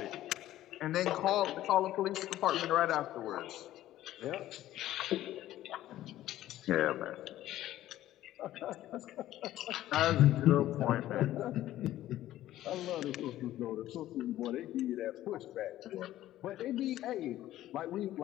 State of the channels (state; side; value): quieter; right; 14.0 dB